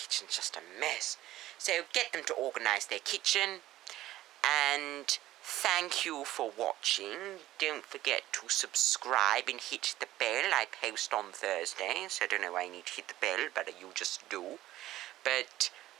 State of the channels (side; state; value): left; quieter; 15.1 dB